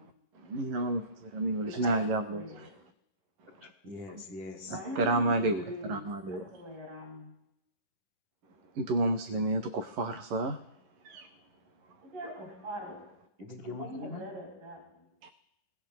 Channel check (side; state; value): left; late; 10 ms